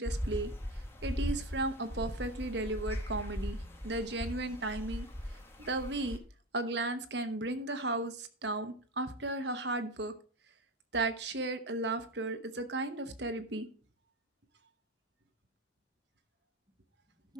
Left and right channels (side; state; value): both; normal; correlation 0.23